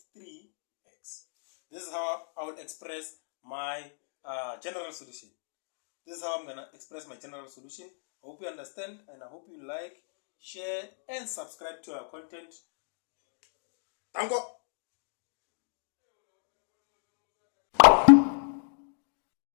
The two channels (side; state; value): right; silent; digital silence